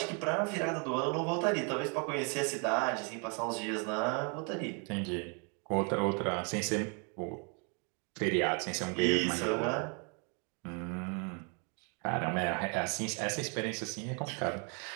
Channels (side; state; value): left; quieter; 36.8 dB